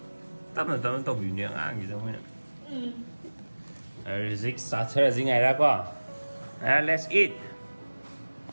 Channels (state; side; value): inverted; both; correlation -1.00